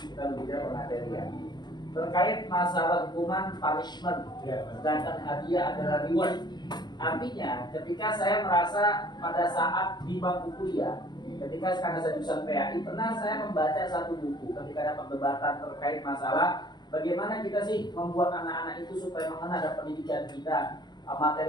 berbicara pemateri ya, terkait masalah hukuman punishment, sedangkan hadiah adalah reward. Artinya, ketika saya merasa pada saat di bangku kuliah, ketika karena saya jurusan PAI, pernah saya membaca satu buku ketika ada perdebatan terkait masalah bagaimana kita sih membuat anak-anak itu supaya mengenal ada pendidikan kita,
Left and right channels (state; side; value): late; right; 0.21 ms